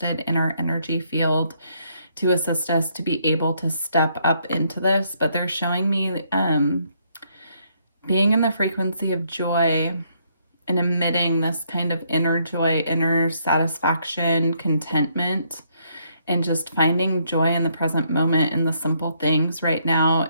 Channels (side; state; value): both; inverted; correlation -0.72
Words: in our energy field to assist us to be able to step up into this. But they're showing me being in the frequency of joy and emitting this kind of inner joy, inner satisfaction, contentment, and just finding joy in the present moment in the simple things right now